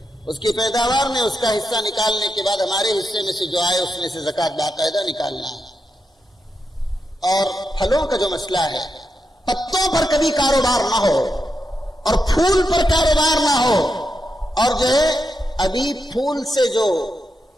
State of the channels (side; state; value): both; normal; correlation 0.85